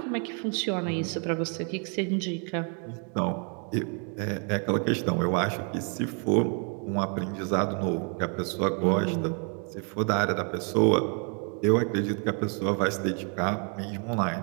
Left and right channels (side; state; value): left; quieter; 39.7 dB